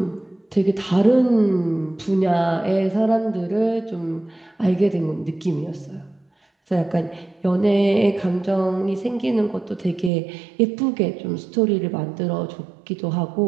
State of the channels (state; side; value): drops out; left; at 10.1 s